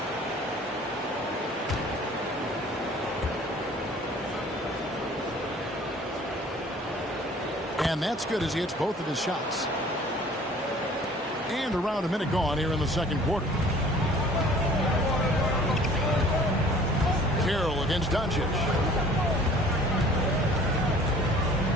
And that's good as he hits both of his shots. And around a minute gone here in the second quarter. Carroll against Doncic.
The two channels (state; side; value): normal; both; correlation 0.51